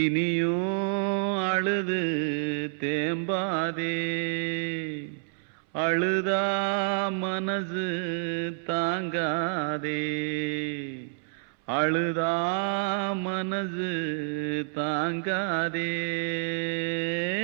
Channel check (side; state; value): left; silent; 59 dB below the other